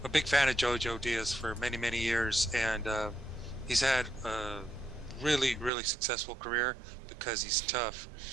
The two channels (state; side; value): drops out; left; at 5.7 s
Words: I'm a big fan of Jojo Diaz for many, many years, and he's had a really, really successful career because he's tough.